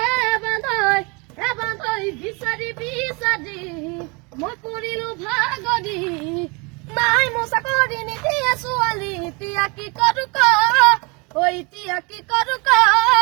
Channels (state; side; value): quieter; left; 29.7 dB